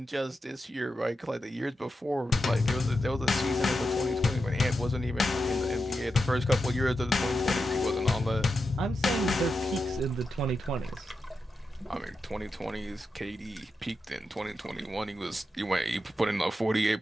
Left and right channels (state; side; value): normal; both; correlation 0.88